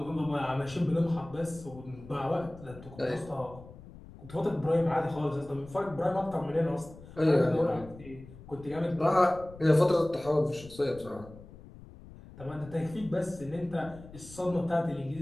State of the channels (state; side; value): noise; left; rumble, 18 dB below the sound